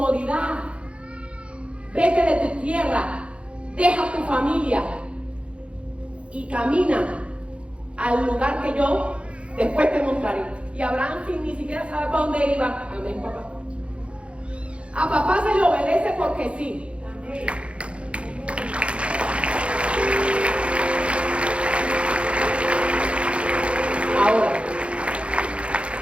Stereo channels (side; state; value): left; late; 0.060 ms